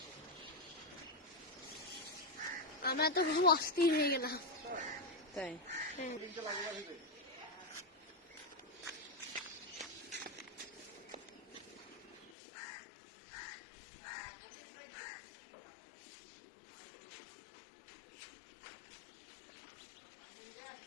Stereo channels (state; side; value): drops out; right; at 12.3 s